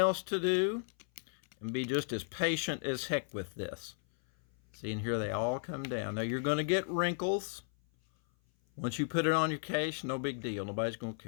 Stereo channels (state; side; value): silent; right; 55 dB below the other